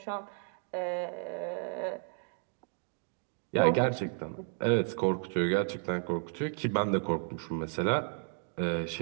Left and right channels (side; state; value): left; silent; 56 dB below the other